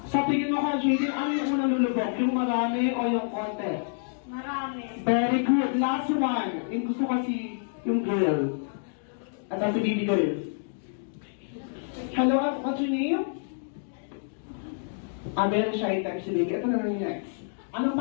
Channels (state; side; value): silent; right; digital silence